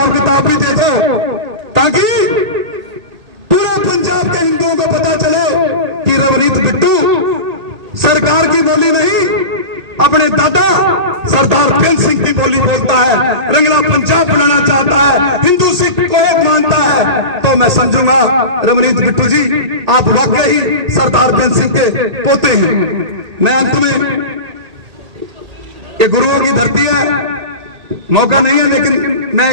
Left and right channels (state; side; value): late; left; 1.8 ms